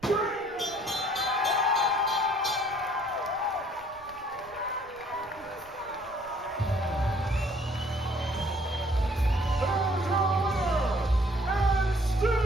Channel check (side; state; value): right; noise; rumble, 26 dB below the sound